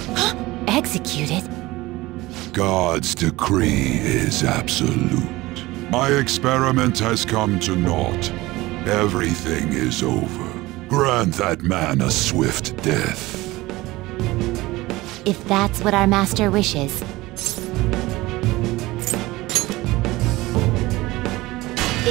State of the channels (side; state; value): left; quieter; 19.5 dB